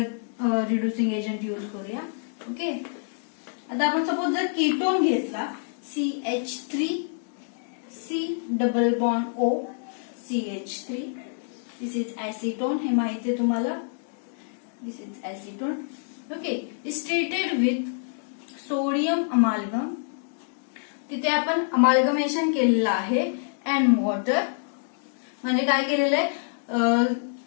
reducing agent use करूया. ओके, आता आपण सपोज जर कीटोन घेतला, CH3C double bond O CH3. This is acetone. हे माहिती आहे तुम्हाला. This is acetone. Okay, is treated with sodium amalgam. तिथे आपण अमाल्गमेशन केलेलं आहे अँड वॉटर. म्हणजे काय केलेलं आहे,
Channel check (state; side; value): silent; right; digital silence